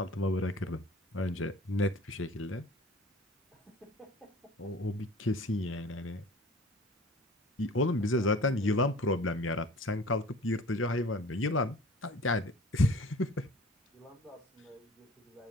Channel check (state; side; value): normal; both; correlation 0.45